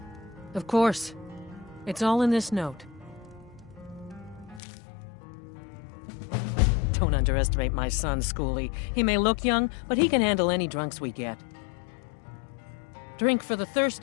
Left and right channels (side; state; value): right; drops out; at 4.6 s